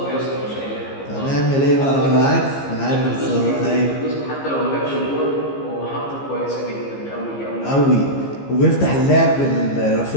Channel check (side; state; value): right; late; 15 ms